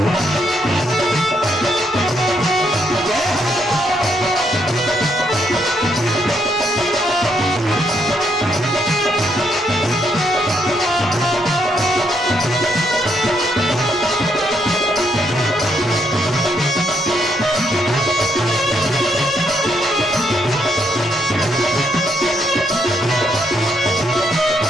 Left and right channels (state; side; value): normal; both; correlation 0.75